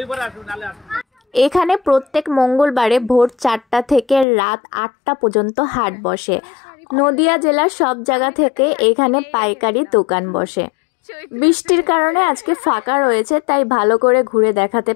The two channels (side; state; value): right; drops out; at 4.2 s